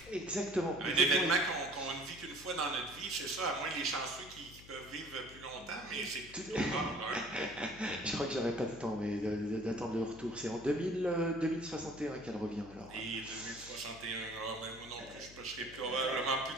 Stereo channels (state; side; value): noise; left; hum, 18 dB below the sound